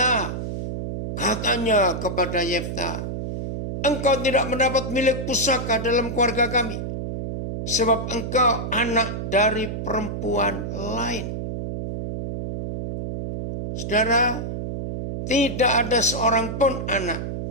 Katanya kepada Yefta, engkau tidak mendapat milik pusaka dalam keluarga kami. Sebab engkau anak dari perempuan lain. Saudara, tidak ada seorang pun anak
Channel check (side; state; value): right; noise; hum, 5 dB below the sound